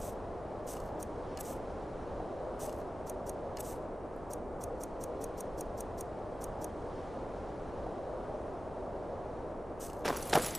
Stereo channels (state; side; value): normal; both; correlation 0.96